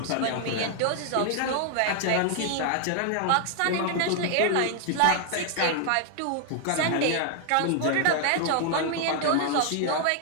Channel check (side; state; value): both; different; correlation 0.00